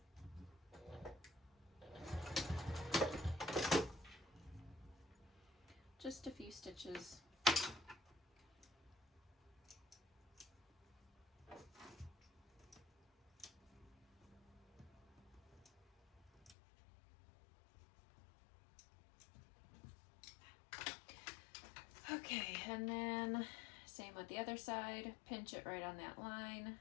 Just a few stitches. Okay, and then same with the other side, pinch it right on that line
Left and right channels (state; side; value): drops out; right; at 16.6 s